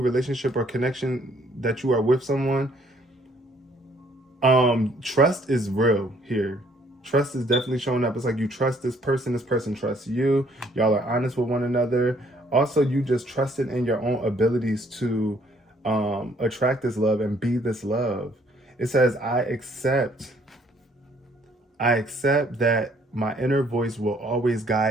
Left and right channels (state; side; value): normal; both; correlation 0.64